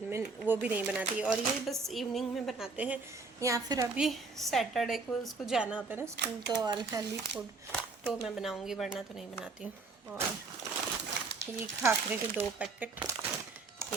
में, वो भी नहीं बनाती। और ये बस इवनिंग में बनाते हैं, या फिर अभी सैटरडे को उसको जाना होता है ना स्कूल, तो अनहेल्दी फूड तो मैं बनाऊँगी, वरना तो नहीं बनाती हूँ। और ये खाखरे के 2 पैकेट,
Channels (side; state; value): left; quieter; 4.0 dB